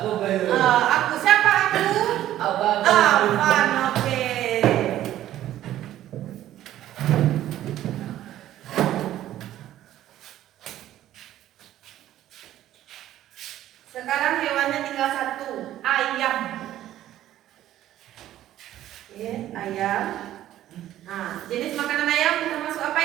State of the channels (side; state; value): left; quieter; 13.0 dB